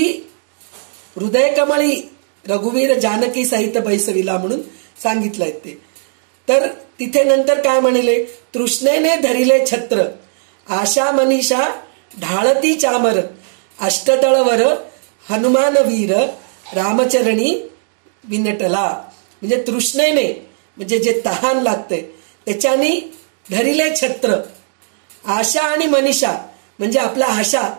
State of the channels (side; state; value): left; silent; digital silence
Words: हृदय कमळी रघुवीर जानकी सहित बैसविला म्हणून सांगितलंय ते. तर तिथे नंतर काय म्हणले, तृष्णेने धरिले छत्र, आशा मनीषा ढाळती चामर, अष्टदळवर हनुमान वीर, रामचरणी विनटला. म्हणजे तृष्णेने, म्हणजे जे तहान लागते त्याच्याने धरिले छत्र, आशा आणि मनीषा म्हणजे आपला आशा,